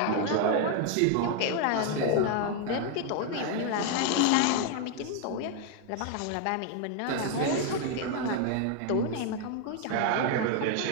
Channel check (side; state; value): both; different; correlation 0.00